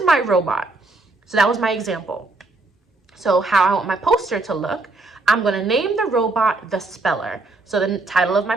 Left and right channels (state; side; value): quieter; left; 3.1 dB